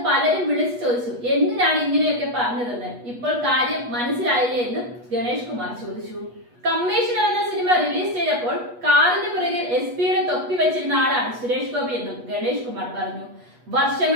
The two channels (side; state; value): left; late; 8.3 ms